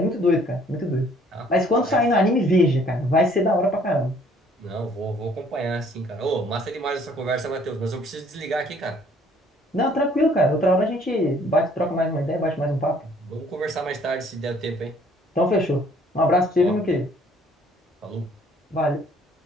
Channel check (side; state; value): both; normal; correlation 0.60